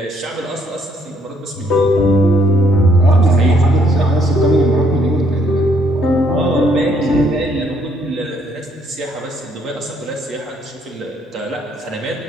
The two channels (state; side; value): normal; both; correlation 0.68